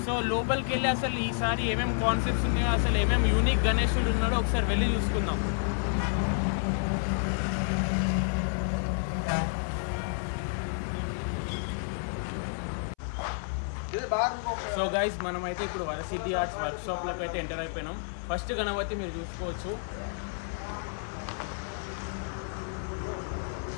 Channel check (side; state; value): right; silent; 58 dB below the other